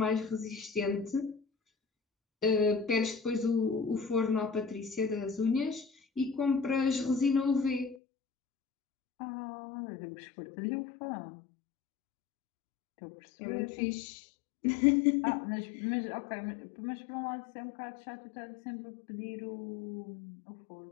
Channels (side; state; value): right; drops out; at 8.0 s